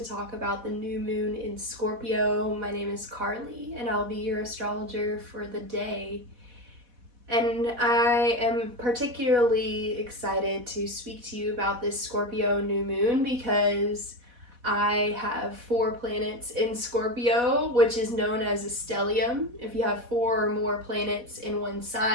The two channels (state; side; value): late; left; 4.1 ms